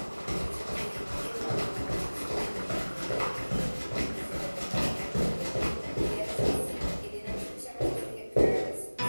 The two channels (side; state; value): both; inverted; correlation -1.00